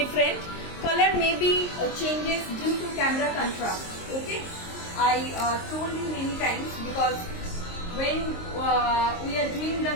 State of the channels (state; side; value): late; right; 23 ms